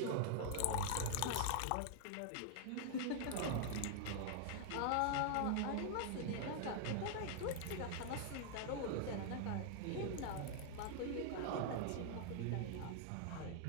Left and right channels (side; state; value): both; different; correlation 0.00